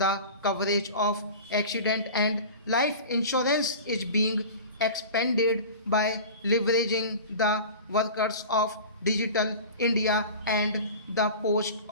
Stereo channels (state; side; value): inverted; both; correlation -0.35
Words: coverage of accident and life insurance is being expanded by leveraging the workers of Digital India and the post